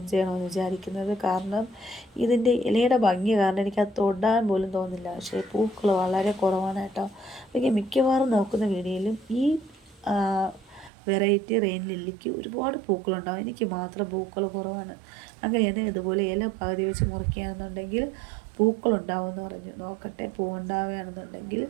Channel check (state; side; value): drops out; left; at 10.9 s